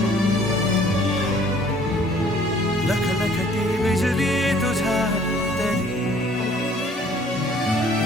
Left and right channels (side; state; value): both; normal; correlation 0.57